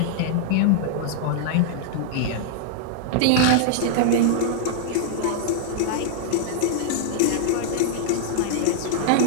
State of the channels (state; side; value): different; both; correlation -0.01